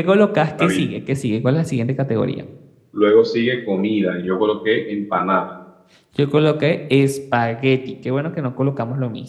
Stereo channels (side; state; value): both; identical; correlation 1.00